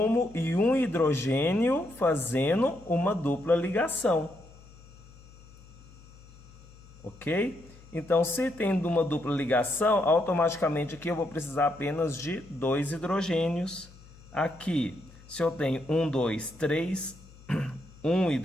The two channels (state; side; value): noise; left; hum, 22 dB below the sound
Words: e um hidrogênio, fazendo uma dupla ligação. Ok? Então, se tem uma dupla ligação, automaticamente aqui eu vou precisar apenas de 2 hidrogênios. Aqui, se eu tenho 1, 2, 3, um